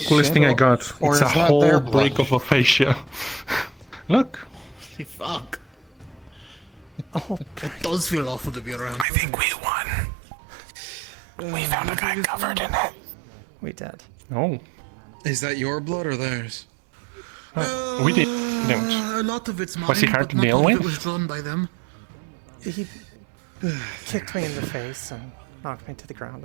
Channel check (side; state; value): left; drops out; at 9.1 s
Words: coolest thing I got. Or It's a is that whole their break of aphasia. Look. Fuck. Oh, it does feel awful to be around. I think we won. We found a guy covered in it. We did. Oh. Is that your blood or theirs? We did. A lot of it's mine, Was he hard but to not deal all of with? it was drawn by them. He kicked me in the face and knocked me to the ground,